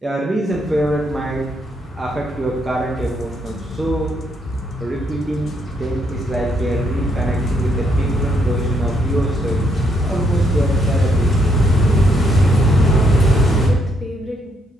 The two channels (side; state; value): both; normal; correlation 0.73